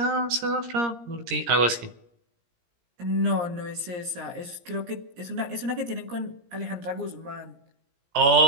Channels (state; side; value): late; left; 17 ms